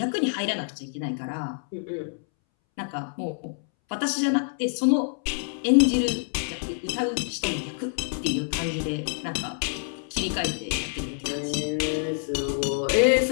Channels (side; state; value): right; silent; 60 dB below the other